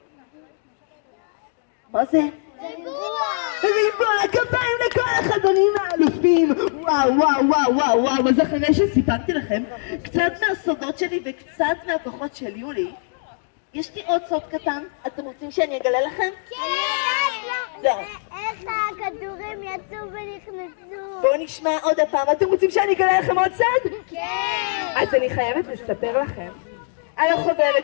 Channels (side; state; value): right; silent; digital silence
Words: מה זה? ריבוע, כפיים לכל החברים האלופים. וואו, אז אחרי שסיפרתי לכם קצת מהסודות שלי וקצת מהכוחות של יולי, יש לי עוד סוד קטן. אתם רוצים שאני אגלה לכם? כן. איך הכדורים יצאו ונכנסו? בואו נשמע עוד הפעם. אתם רוצים שאני אגלה לכם עוד סוד? כן. אז אני חייבת לספר לכם על